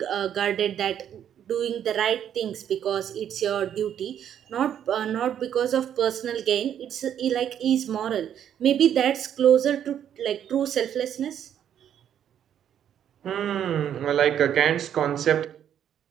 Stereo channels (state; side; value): quieter; left; 9.6 dB